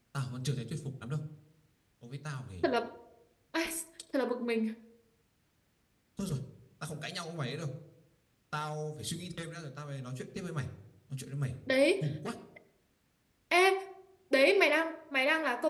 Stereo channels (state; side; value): identical; both; correlation 1.00